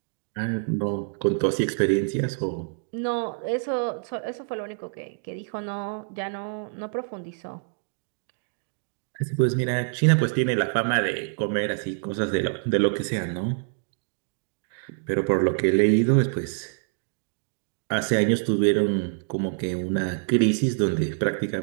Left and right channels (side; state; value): left; silent; digital silence